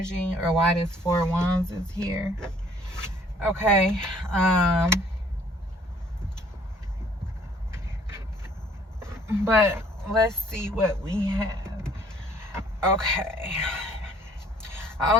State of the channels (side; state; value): both; normal; correlation 0.58